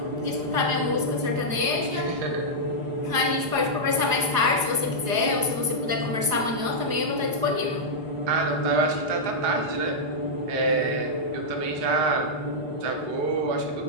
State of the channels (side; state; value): left; late; 4.8 ms